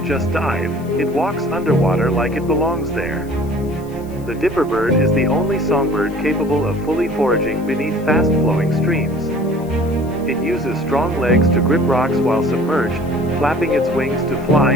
just dive, it walks underwater like it belongs there. The dipper bird is the only songbird capable of fully foraging beneath fast-flowing streams. It uses strong legs to grip rocks while submerged, flapping its wings to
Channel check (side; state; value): left; noise; hiss, 25 dB below the sound